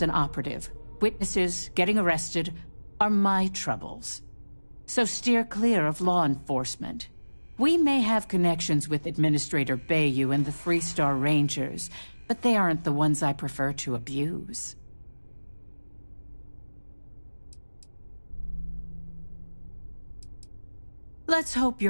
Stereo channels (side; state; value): both; inverted; correlation -1.00